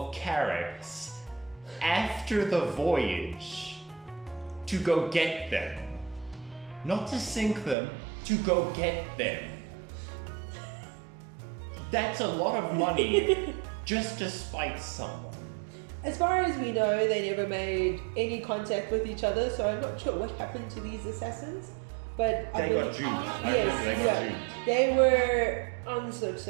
carracks after the voyage to go get them. Not to sink them, to go get them. That's a lot of money just to spite someone. As far as we know, they never made any contact with each other, so I'm not sure what happened to these assassins. But They got duped. I Yes, remember they got yeah. duped. They were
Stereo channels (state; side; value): drops out; left; at 7.8 s